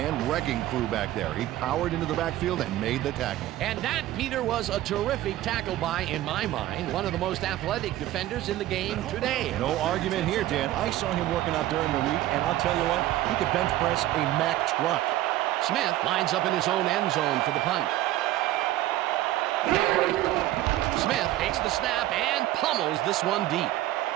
wrecking crew back there. He powered into the backfield and made the tackle. And that, Peter, was a terrific tackle by, in my mind, one of the most athletic defenders in the game today. No argument here, Dan. I saw him working out during the week, and I'll tell you what, he could bench press a Mack truck. Smith lines up in his own end zone for the punt. Smith takes the snap and pummels this one deep.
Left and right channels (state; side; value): quieter; left; 14.8 dB